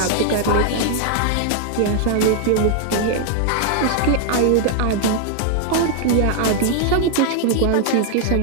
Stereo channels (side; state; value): both; different; correlation 0.00